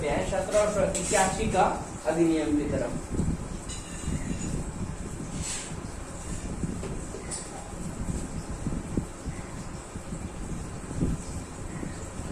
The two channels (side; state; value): both; identical; correlation 1.00